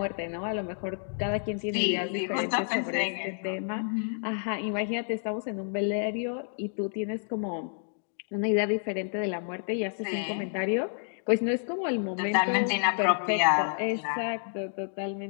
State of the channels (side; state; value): right; silent; digital silence